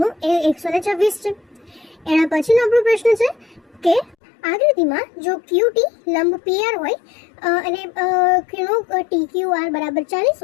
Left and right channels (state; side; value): drops out; right; at 4.2 s